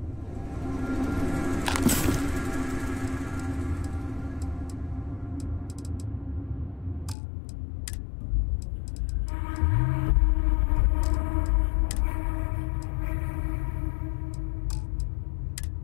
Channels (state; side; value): drops out; right; at 7.2 s